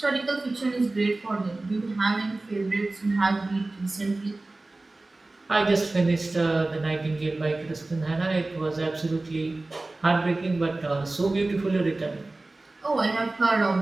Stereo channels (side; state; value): left; quieter; 3.0 dB